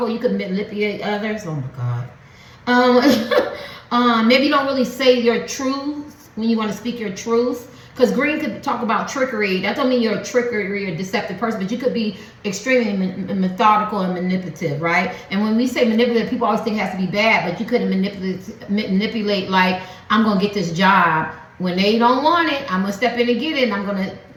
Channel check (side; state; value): both; identical; correlation 1.00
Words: You could manipulate others. Oh my God. Maybe you don't really say your truth when you want to speak your truth. Because green could talk about trickery. That don't mean you're a trickery or deceptive person, but you could be extremely methodical and manipulative, right? And when we say manipulative, people always think it has to be bad, but you couldn't manipulate like, I'm going to get this job. When they don't want it, I'm going to step in and get it, and I'm going to